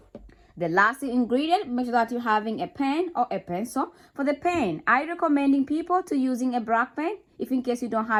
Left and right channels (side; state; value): both; identical; correlation 1.00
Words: The last ingredient, make sure that you're having a pen or a pencil. For the pen, I recommending people to using a black pen. If in case you don't